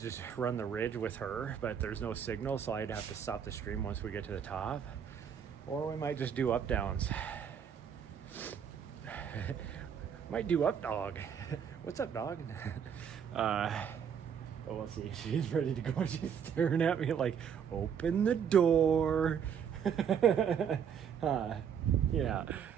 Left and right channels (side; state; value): left; quieter; 7.8 dB